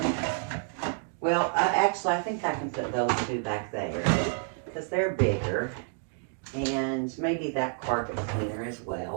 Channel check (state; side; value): silent; left; 58 dB below the other